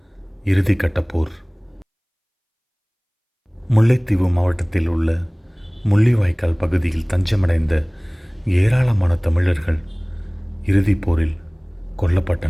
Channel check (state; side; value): identical; both; correlation 1.00